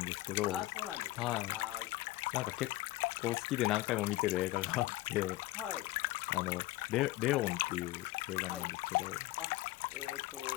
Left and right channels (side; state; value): right; quieter; 18.0 dB